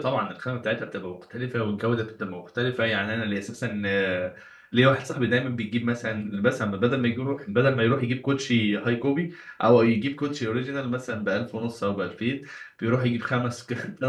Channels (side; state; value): both; identical; correlation 1.00